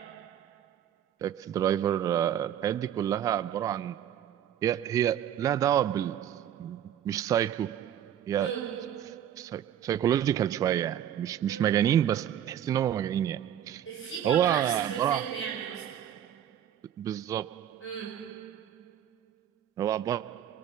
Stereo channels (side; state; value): left; quieter; 10.2 dB